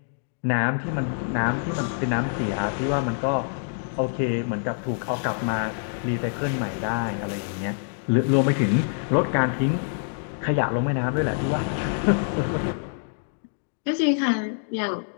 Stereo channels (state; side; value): silent; right; digital silence